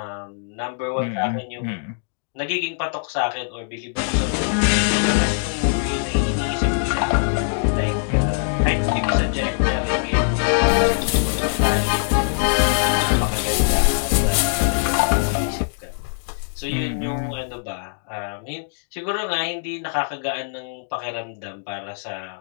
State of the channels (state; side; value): silent; right; digital silence